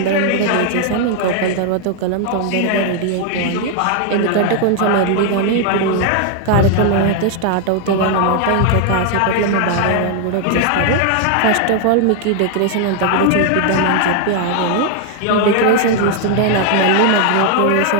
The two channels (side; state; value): both; different; correlation 0.00